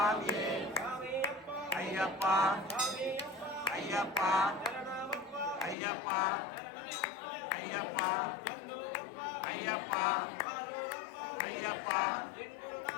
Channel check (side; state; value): right; drops out; at 5.8 s